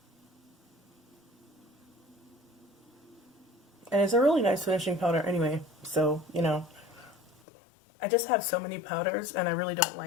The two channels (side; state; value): right; drops out; at 7.4 s